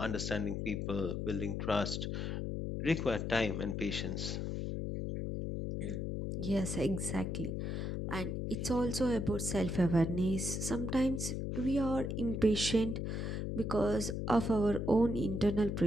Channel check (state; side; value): noise; left; hum, 2 dB below the sound